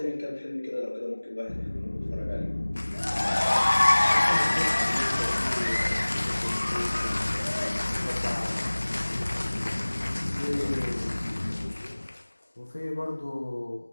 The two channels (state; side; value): inverted; both; correlation -1.00